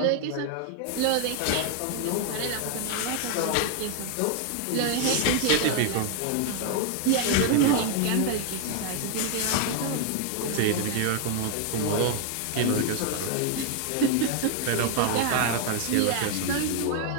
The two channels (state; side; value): different; both; correlation 0.01